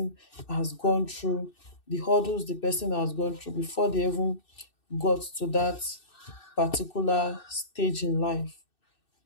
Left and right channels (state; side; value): late; right; 2.6 ms